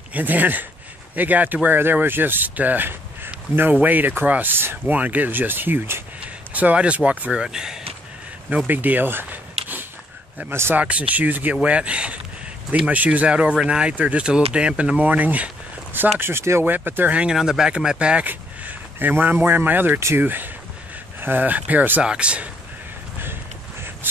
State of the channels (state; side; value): normal; both; correlation 0.70